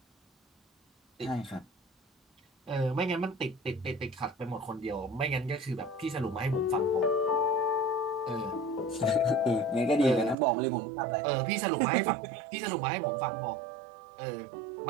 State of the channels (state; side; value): drops out; left; at 10.4 s